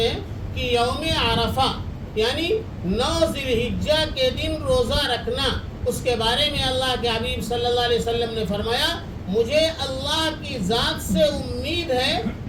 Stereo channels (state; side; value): identical; both; correlation 1.00